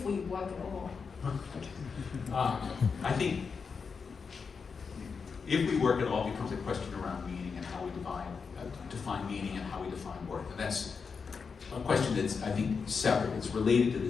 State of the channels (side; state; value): right; quieter; 5.5 dB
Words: we work at all? I think if we work at all, becomes a question around meaning and how we define meaning and how we define work. And that's a question that's, I think, separate. It's related to